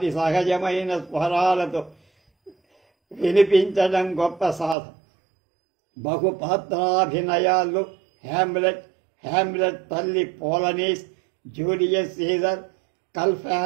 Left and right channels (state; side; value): drops out; left; at 4.8 s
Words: సహజమైన స్వరాలతో వినిపించడం గొప్ప సాధన. బహుపాత్రాభినయాల్లో హ్యామ్లెట్ తల్లి పోలనీస్, జూలియస్ సీజర్,